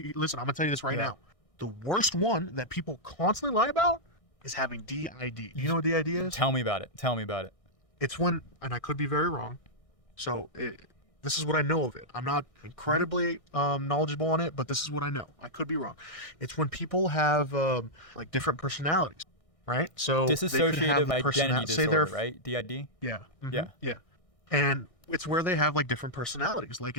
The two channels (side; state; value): right; late; 1.6 ms